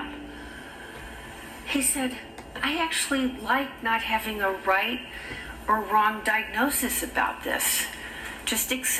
He said, I actually like not having a right or wrong diagnosis about this. Just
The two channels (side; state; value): both; identical; correlation 1.00